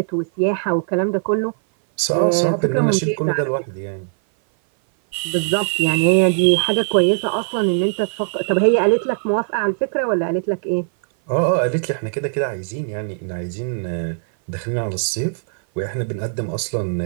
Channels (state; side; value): silent; left; 58 dB below the other